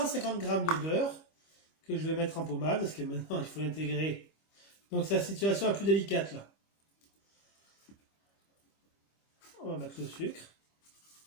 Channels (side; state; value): right; late; 25 ms